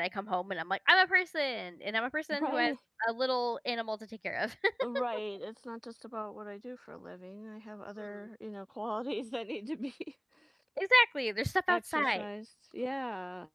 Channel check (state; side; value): identical; both; correlation 1.00